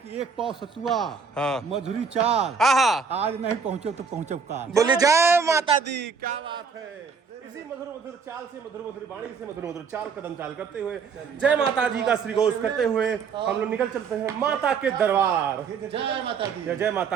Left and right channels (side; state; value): left; quieter; 5.7 dB